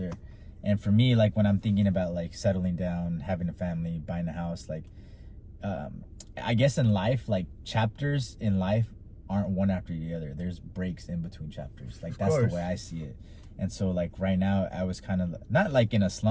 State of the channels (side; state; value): both; identical; correlation 1.00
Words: And for me, like when I'm thinking about like settling down, having a family, buying a house, like I guess in life, like chapters in life aren't one after the other. There's breaks in between chapters. Like that's the way I see it. And so like right now I was kind of not like in a